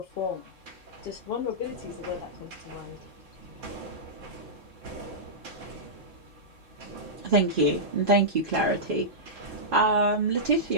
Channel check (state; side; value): normal; both; correlation -0.13